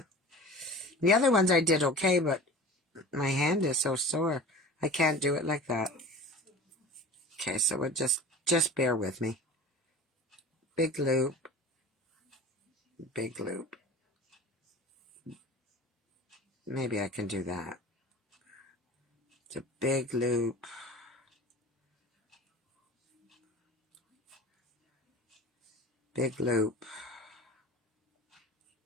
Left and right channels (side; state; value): both; normal; correlation 0.37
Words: The other ones I did okay, but my hand is so sore. I can't do it like that. Okay, so we'll just bear with me. Big loop. Big loop. Maybe I can do that. It's a big loop. Big loop.